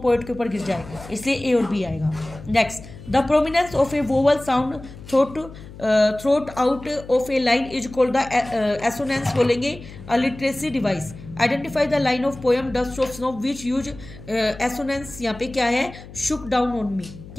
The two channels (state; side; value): noise; left; hum, 16 dB below the sound